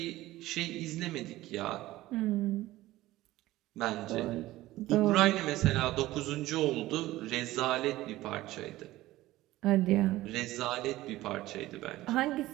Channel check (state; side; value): quieter; left; 16.8 dB